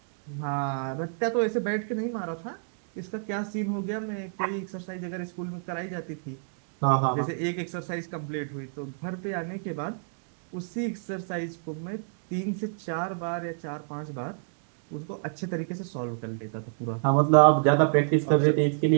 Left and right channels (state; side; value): silent; left; digital silence